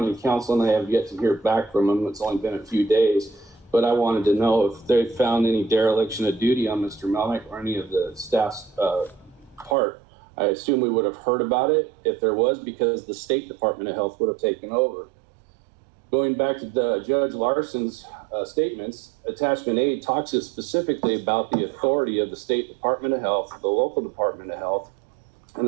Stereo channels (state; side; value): drops out; left; at 9.8 s